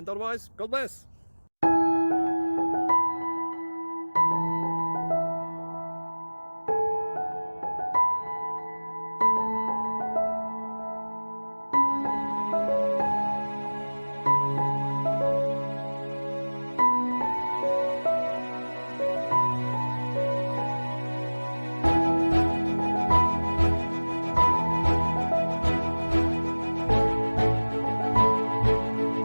otherwise, God bless.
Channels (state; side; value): inverted; both; correlation -1.00